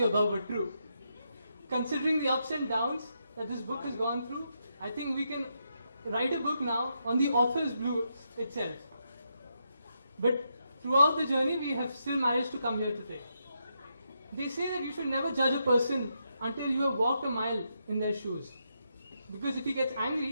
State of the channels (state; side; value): inverted; both; correlation -0.82